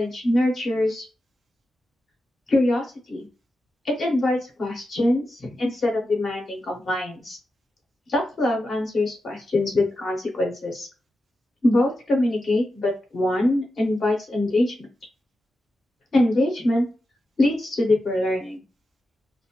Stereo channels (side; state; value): both; normal; correlation 0.90